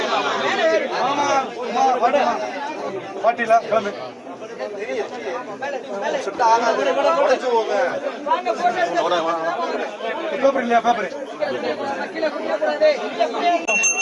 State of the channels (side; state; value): both; identical; correlation 1.00